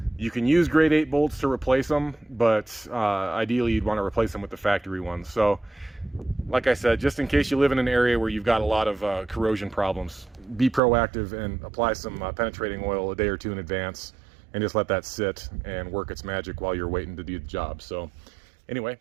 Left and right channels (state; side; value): drops out; left; at 10.8 s